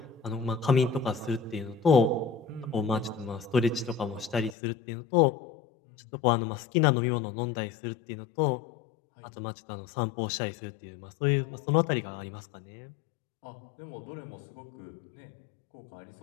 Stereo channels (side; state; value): right; drops out; at 4.5 s